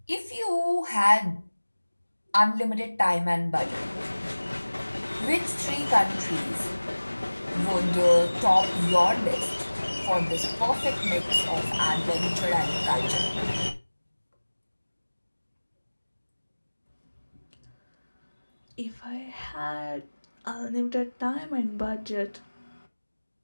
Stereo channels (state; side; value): inverted; both; correlation -1.00